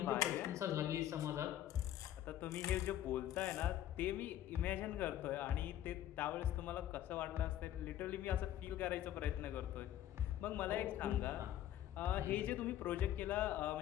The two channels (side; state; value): right; quieter; 12.2 dB